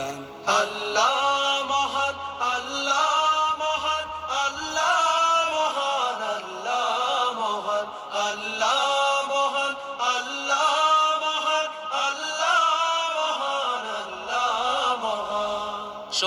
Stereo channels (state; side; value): identical; both; correlation 1.00